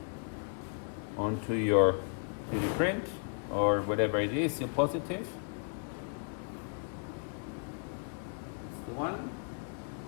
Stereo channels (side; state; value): right; silent; 55 dB below the other